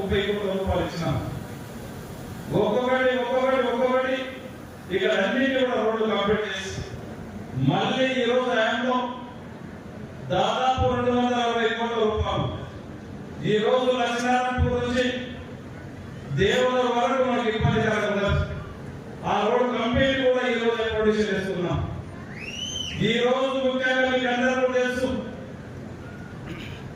కోట్ల రూపాయలు ఇచ్చినాం. ఒక్కొక్కటి ఇక్కడ అన్నింటి కూడా రోడ్లు కంప్లీట్ చేసి మళ్ళీ ఈ రోజు ఆయనలో ఈ రోజు లక్ష్మీనారాయణపూర్ నుంచి దేవుల వరకు మనకి ఇబ్బంది కలగకుండా ఆ రోడ్ కంప్లీట్ కూడా ఈ రోజు ప్రొడ్యూస్ చేస్తున్నాం. ఈ రోజు ముఖ్యంగా మీకు అందరూ తెలుసు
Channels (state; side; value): identical; both; correlation 1.00